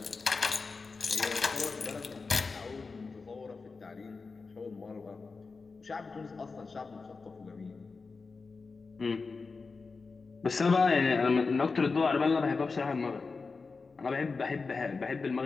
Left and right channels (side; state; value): right; quieter; 4.4 dB